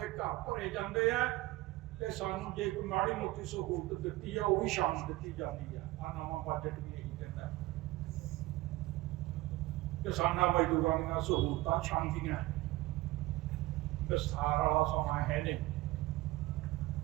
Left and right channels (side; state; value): left; quieter; 18.7 dB